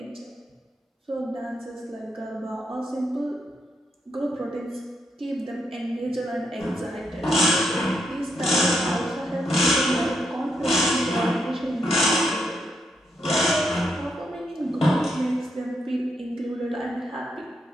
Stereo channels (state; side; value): normal; both; correlation 0.79